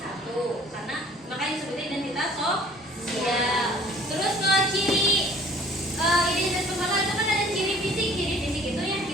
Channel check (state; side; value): normal; both; correlation 0.53